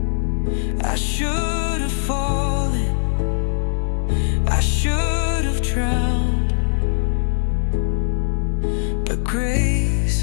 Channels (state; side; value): silent; right; 63 dB below the other